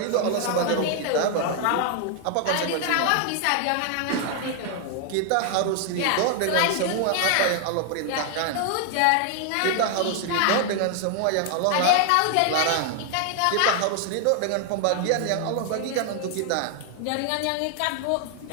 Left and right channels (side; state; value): both; different; correlation 0.00